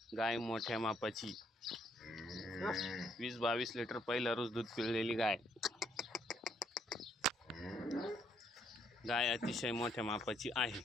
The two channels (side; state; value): both; normal; correlation 0.70